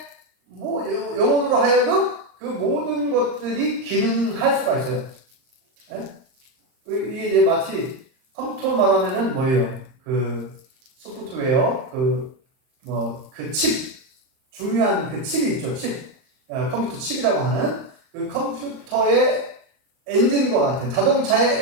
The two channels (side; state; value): left; late; 38 ms